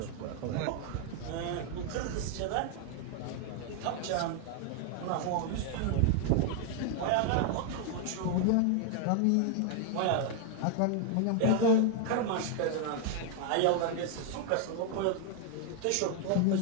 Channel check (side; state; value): both; different; correlation 0.00